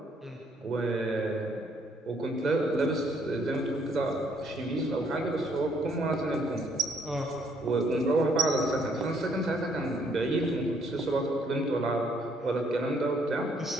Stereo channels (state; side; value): normal; both; correlation 0.67